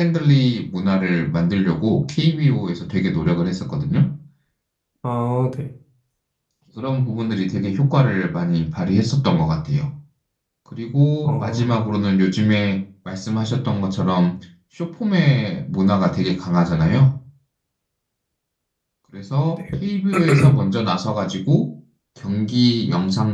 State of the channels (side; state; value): both; identical; correlation 1.00